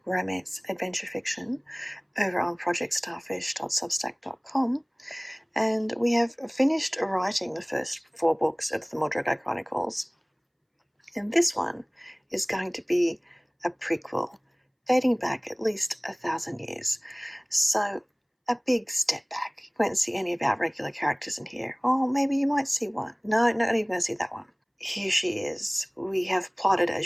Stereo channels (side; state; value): both; identical; correlation 1.00